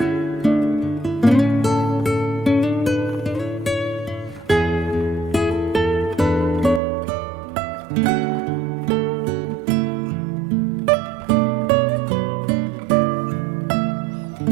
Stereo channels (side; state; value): left; drops out; at 6.8 s